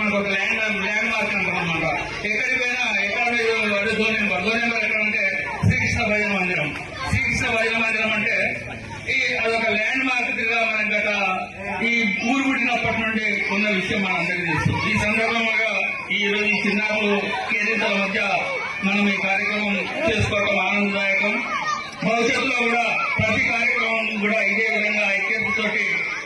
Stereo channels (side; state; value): both; identical; correlation 1.00